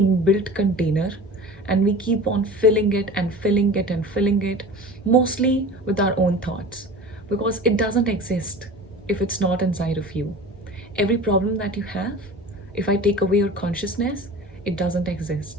container, and we keep on filling it and filling it and filling it, mostly with our own thoughts, because it doesn't exist if it's not inside of you. Every problem that you have, if I take away your consciousness, it doesn't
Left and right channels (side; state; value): both; normal; correlation 0.37